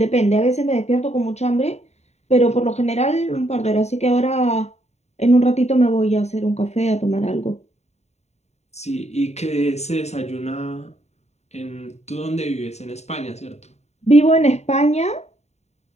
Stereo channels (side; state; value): right; late; 0.32 ms